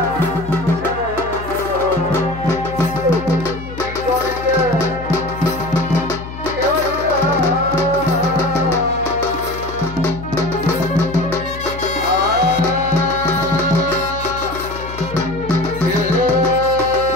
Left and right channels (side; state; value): left; noise; hum, 11 dB below the sound